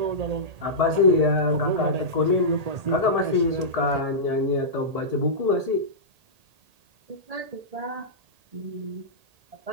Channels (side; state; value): left; late; 1.8 ms